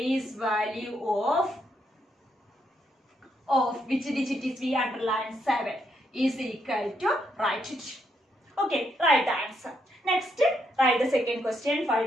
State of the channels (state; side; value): normal; both; correlation 0.77